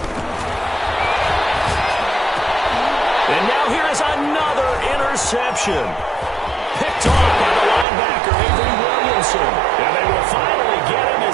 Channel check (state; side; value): drops out; left; at 7.9 s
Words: And now here is another interception. Picked off by the linebacker, Avery Williamson. And they will finally get him